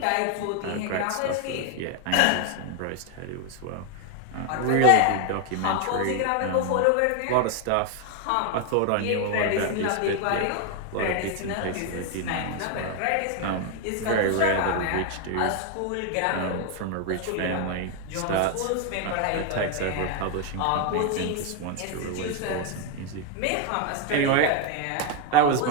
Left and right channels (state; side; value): different; both; correlation 0.01